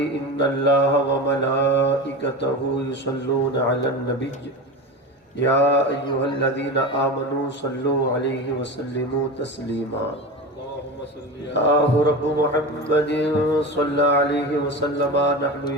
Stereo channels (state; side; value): normal; both; correlation 0.27